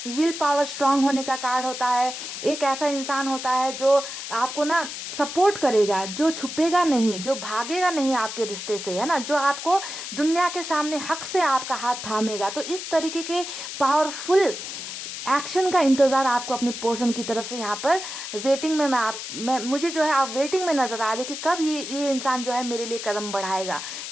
विल पावर, स्ट्रांग होने का कार्ड होता है। एक ऐसा इंसान होता है जो आपको ना सपोर्ट करेगा, जो छुपेगा नहीं, जो भागेगा नहीं आपके रिश्ते से, है ना, जो आपको दुनिया के सामने हक से आपका हाथ थामेगा। तो इस तरीके के पावरफुल एक्शन का इंतज़ार आपको अपने पर्सन की तरफ से यहाँ पर वेटिंग में मैं मुझे जो है आप वेटिंग में नज़र आ रहे हो कि कब ये इंसान जो है मेरे लिए कदम बढ़ाएगा,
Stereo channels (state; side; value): noise; left; hiss, 8 dB below the sound